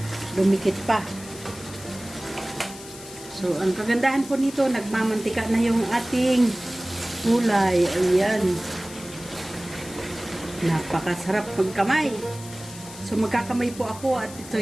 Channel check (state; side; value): noise; left; hiss, 16 dB below the sound